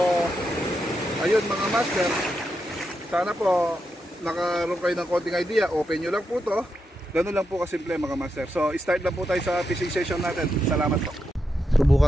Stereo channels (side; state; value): both; normal; correlation 0.85